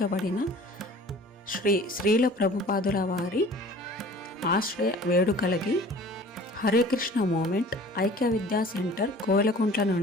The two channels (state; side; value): normal; both; correlation 0.46